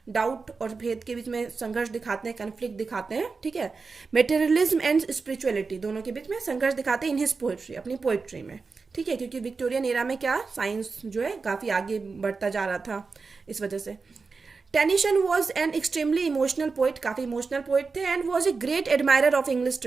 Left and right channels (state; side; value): quieter; left; 4.5 dB